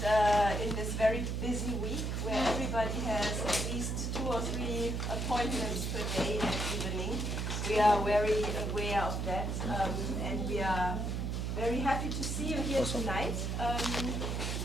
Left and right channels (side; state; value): right; noise; hum, 1 dB below the sound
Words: in this very busy week where everybody has at least 2 or 3 appointments per day and evening. We are very aware of that, and we are very happy to see you here tonight